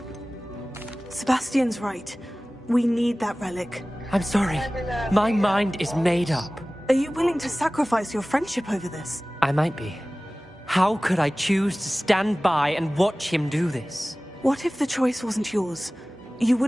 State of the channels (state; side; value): normal; both; correlation 0.98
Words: Sebastian's right. We need that relic. I'm sorry. My mind is made up. Are you willing to sacrifice your friendship over this? I might be. How could I choose to stand by and watch him do this? What if the choice wasn't yours? You